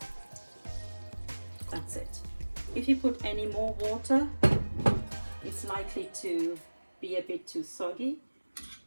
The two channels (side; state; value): both; inverted; correlation -1.00